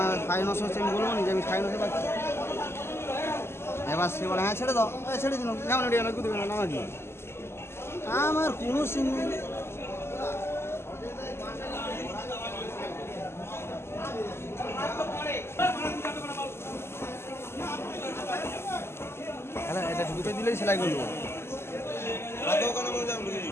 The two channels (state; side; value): late; right; 0.12 ms